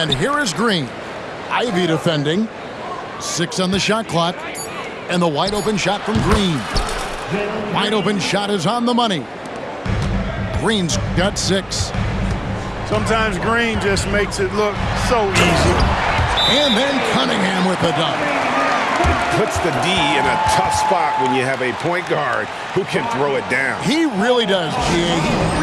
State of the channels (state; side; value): identical; both; correlation 1.00